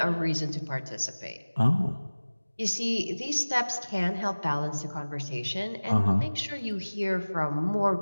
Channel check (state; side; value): inverted; both; correlation -1.00